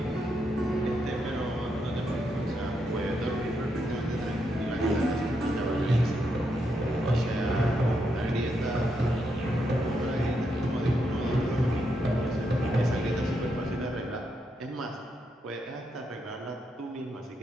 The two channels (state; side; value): normal; both; correlation 0.81